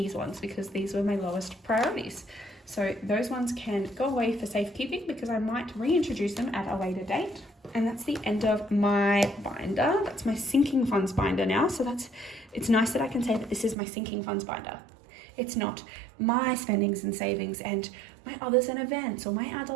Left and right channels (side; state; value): left; drops out; at 13.8 s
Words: ones because these were my lowest priorities. So those ones can go away for safekeeping because I might reintroduce them at a later date. And that's the end of my binder. That's my sinking funds binder now. So it's nice that I can say that this is my sinking funds binder. It's not my spendings and savings and my others and events or my